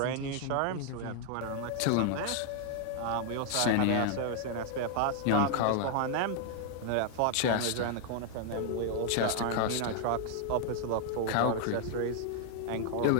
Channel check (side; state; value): both; different; correlation 0.00